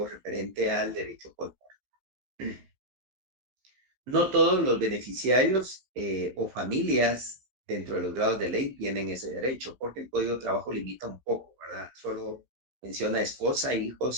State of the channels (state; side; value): late; left; 16 ms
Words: referente al derecho político. No todos los beneficiarios o familias dentro de los grados de ley tienen ese derecho, porque el Código de Trabajo limita un poco, ¿verdad? Solo menciona esposa,